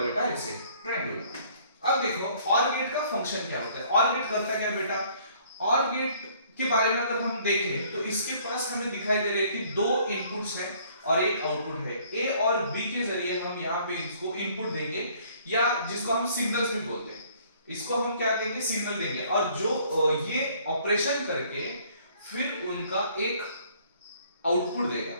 है बेटा ऐसे, ट्रायंगुलर। अब देखो ऑर गेट का फंक्शन क्या होता है। ऑर गेट करता क्या बेटा? ऑर गेट के बारे में अगर हम देखें तो इसके पास हमें दिखाई दे रहा है कि 2 इनपुट्स हैं और एक आउटपुट है। ए और बी के जरिए हम यहाँ पे इसको इनपुट देंगे, या जिसको हम सिग्नल्स भी बोलते हैं। इसको हम क्या देंगे? सिग्नल देंगे। और जो ये ऑपरेशन करके फिर उनका एक आउटपुट देगा।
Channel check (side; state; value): both; inverted; correlation -0.59